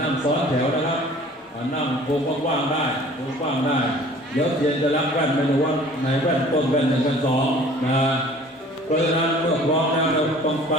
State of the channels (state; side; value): normal; both; correlation 0.49